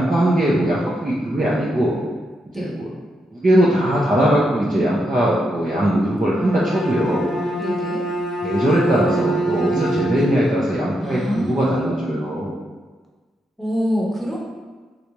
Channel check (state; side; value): normal; both; correlation 0.82